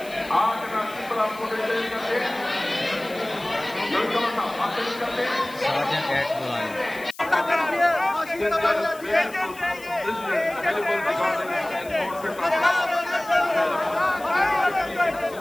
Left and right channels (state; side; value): noise; left; hiss, 20 dB below the sound